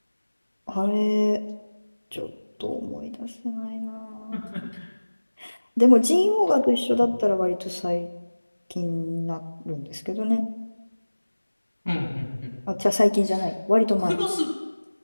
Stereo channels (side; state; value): both; inverted; correlation -1.00